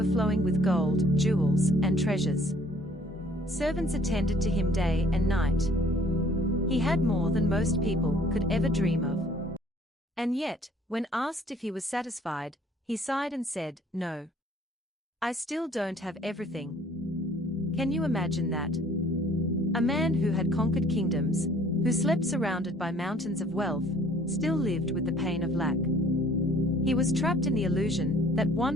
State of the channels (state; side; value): normal; both; correlation 0.57